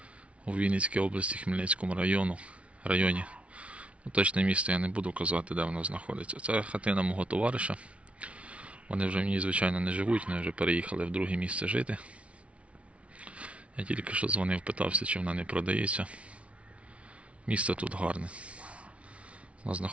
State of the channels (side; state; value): left; late; 0.062 ms